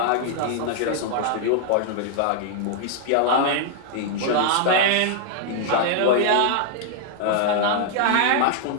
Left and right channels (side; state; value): both; different; correlation 0.00